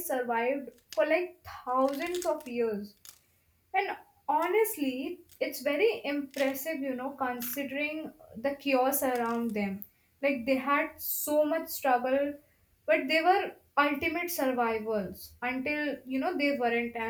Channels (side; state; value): both; identical; correlation 1.00